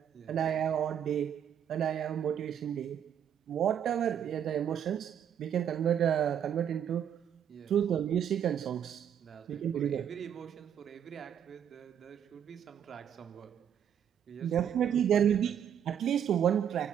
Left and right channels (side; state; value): left; quieter; 9.0 dB